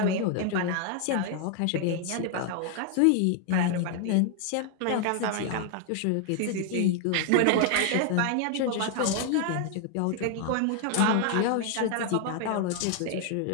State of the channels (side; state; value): both; different; correlation 0.00